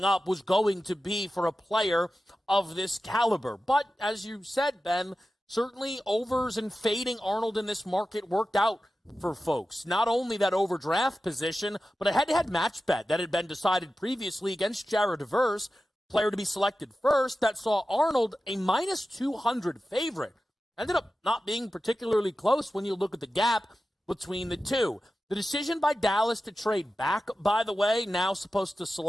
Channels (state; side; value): normal; both; correlation 0.93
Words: up was going to be for a player of this caliber. But as you said, Ben, certainly overs and fading Arnold in this market worked out for folks. Not only that overdraft position, but a head-to-head match bet that had been decided previously against Jared Verse, player to be selected first, that saw Arnold a minus 200 favorite. Ended up not being particularly close when you look at the gap between the two. The decision by Dallas to trade back, by the way, now supposed to